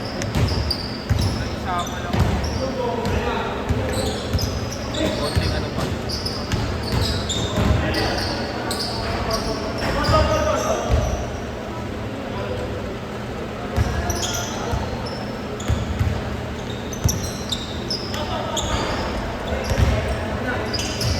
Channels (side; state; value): both; identical; correlation 1.00